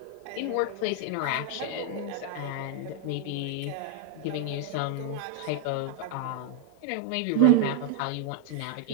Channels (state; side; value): different; both; correlation 0.00